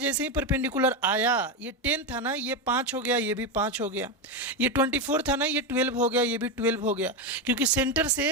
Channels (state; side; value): normal; both; correlation 0.11